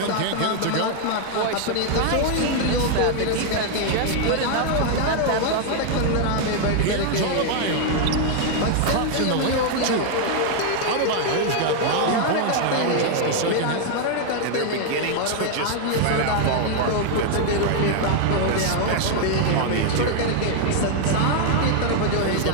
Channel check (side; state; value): both; different; correlation 0.00